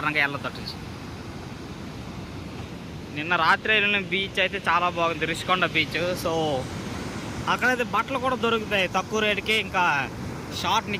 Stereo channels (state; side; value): identical; both; correlation 1.00